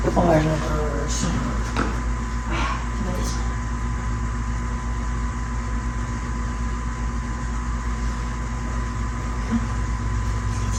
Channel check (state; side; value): identical; both; correlation 1.00